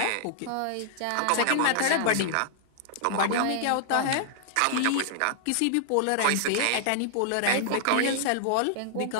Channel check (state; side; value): different; both; correlation -0.01